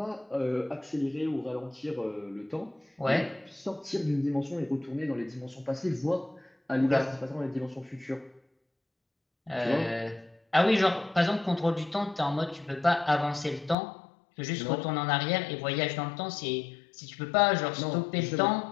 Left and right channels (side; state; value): right; drops out; at 13.8 s